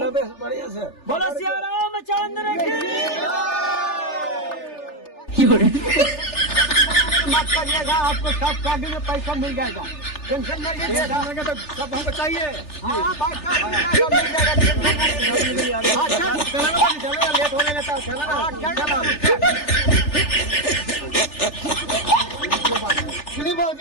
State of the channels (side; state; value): right; late; 3.4 ms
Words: बढ़िया से बोलो सिया रामचंद्र की मत करिएगा आपको सब शादी में पैसा मिल जाएगा टेंशन नहीं लीजिएगा तो सब हमको चाहिए हाँ बात मिल जाएगा चलो लेट होने लगता है